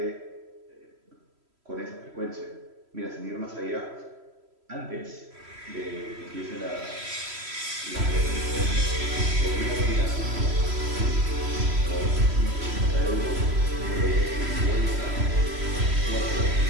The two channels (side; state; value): left; late; 3.1 ms